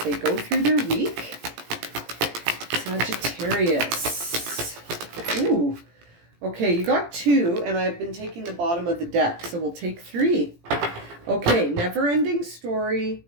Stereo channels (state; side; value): late; left; 17 ms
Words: go through their week? Sagittarius. Ooh. Okay, you got 2, and I've been taking the bottom of the deck, so we'll take 3. Okay, never-ending story,